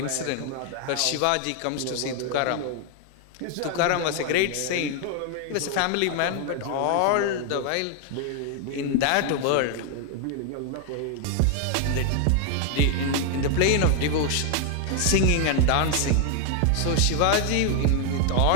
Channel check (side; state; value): both; different; correlation 0.00